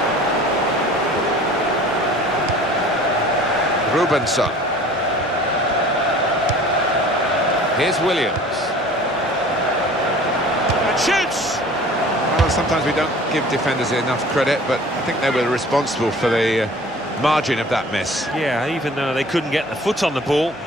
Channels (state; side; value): normal; both; correlation 0.46